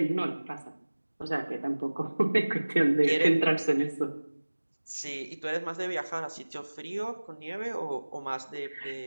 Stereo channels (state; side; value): inverted; both; correlation -1.00